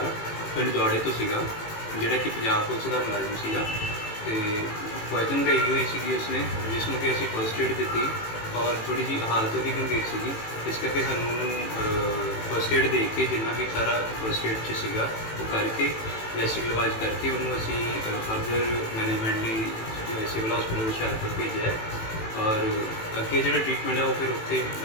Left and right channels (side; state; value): right; late; 18 ms